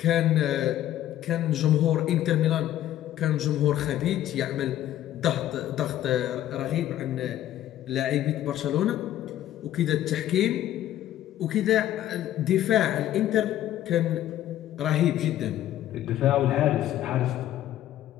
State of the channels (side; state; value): right; quieter; 12.7 dB